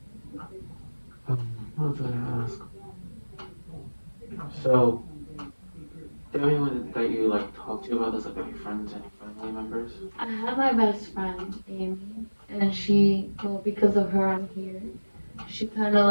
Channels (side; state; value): both; inverted; correlation -1.00